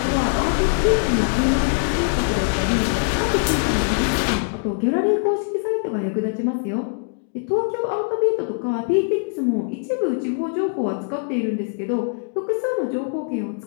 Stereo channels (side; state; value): right; silent; digital silence